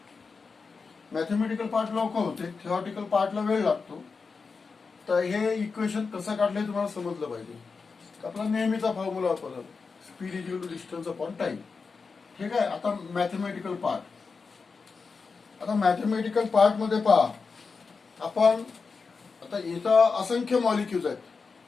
मॅथमॅटिकल पार्ट लवकर होते, थेरॉटिकल पार्टला वेळ लागतो. तर हे इक्वेशन कसं काढले तुम्हाला समजलं पाहिजे. आपला नेहमीचा फॉर्म्युला वापरला, speed is equal to distance upon time. ठीक आहे. आता मॅथमॅटिकल पार्ट. आता मॅथमॅटिकल पार्ट मध्ये पहा, आपण आता इथं असंख्य मॉलिक्यूल्स आहेत,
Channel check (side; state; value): right; quieter; 4.8 dB